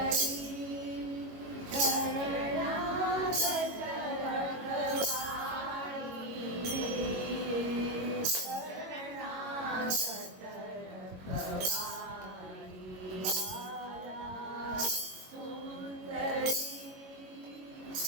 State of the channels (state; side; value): late; left; 22 ms